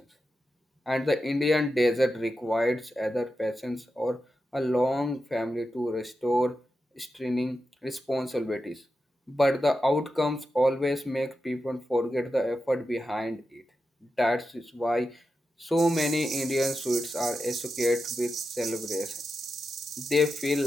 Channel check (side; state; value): both; normal; correlation 0.89